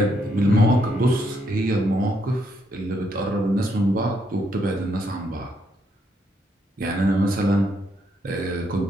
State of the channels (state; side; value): normal; both; correlation 0.75